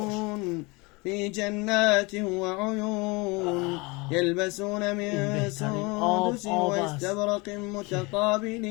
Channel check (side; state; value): right; quieter; 26.3 dB